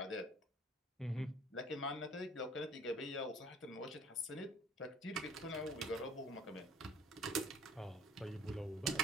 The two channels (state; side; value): normal; both; correlation 0.52